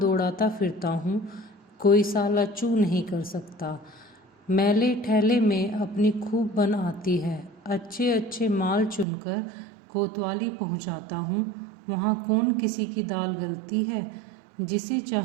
फिरता हूँ, कोई साला चू नहीं कर सकता। मैले ठेले में अपनी खूब बन आती है। अच्छे अच्छे माल चुनकर कोतवाली पहुंचाता हूँ। वहाँ कौन किसी की दाल गलती है। जिसे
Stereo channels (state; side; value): drops out; left; at 9.1 s